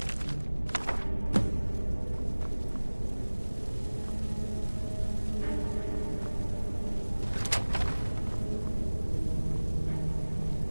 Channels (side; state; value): both; inverted; correlation -1.00